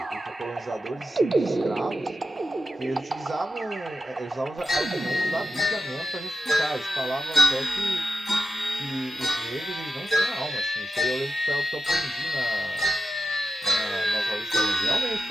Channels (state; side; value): normal; both; correlation 0.91